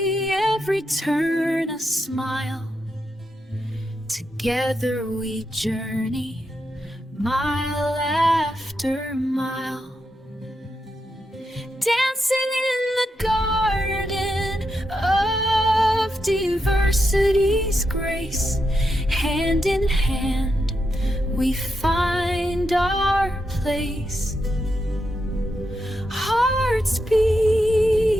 every turn a smile. Together we journey, mile after mile. Dancing in the garden of diversity's grace. Hand in hand we find our place. Hearts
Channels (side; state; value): both; normal; correlation 0.84